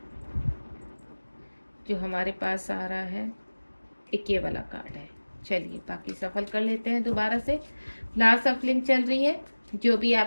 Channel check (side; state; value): both; inverted; correlation -1.00